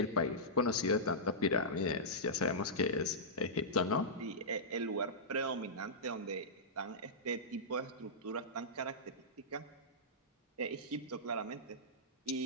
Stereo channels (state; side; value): normal; both; correlation -0.15